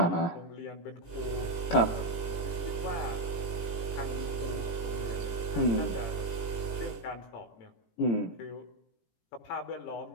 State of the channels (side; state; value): right; late; 18 ms